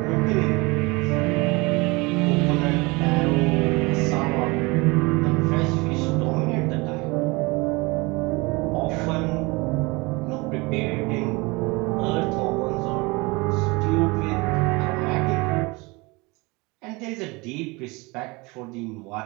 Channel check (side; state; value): left; quieter; 25.4 dB